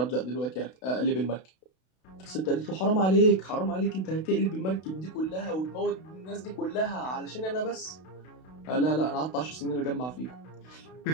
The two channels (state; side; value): late; right; 32 ms